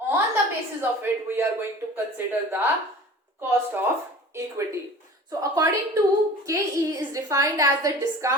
the basis of it we are going to consider the cost of equity. So according to KE is defined as the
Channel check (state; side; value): normal; both; correlation 0.41